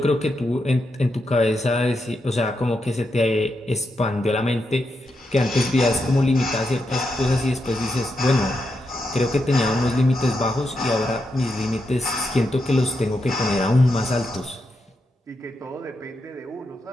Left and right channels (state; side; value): normal; both; correlation 0.84